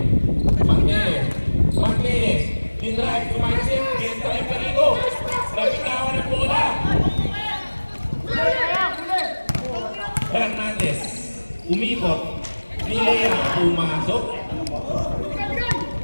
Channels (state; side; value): inverted; both; correlation -1.00